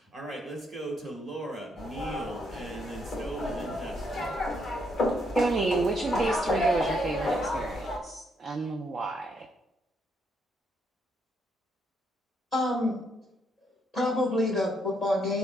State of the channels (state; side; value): normal; both; correlation 0.74